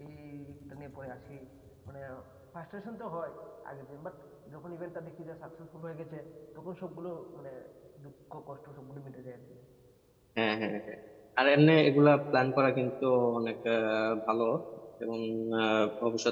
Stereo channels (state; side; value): identical; both; correlation 1.00